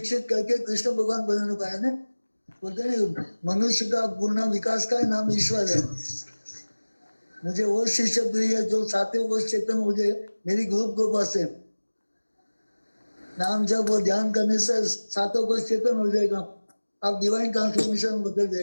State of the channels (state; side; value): inverted; both; correlation -1.00